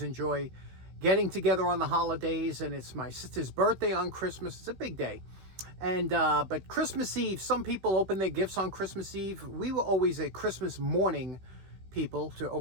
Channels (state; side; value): late; left; 16 ms